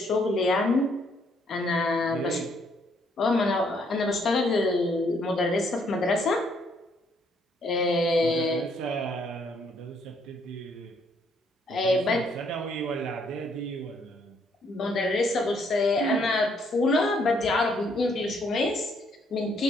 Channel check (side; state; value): both; normal; correlation 0.69